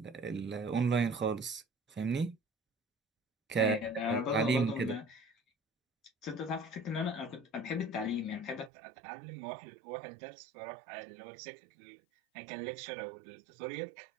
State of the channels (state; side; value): drops out; left; at 8.7 s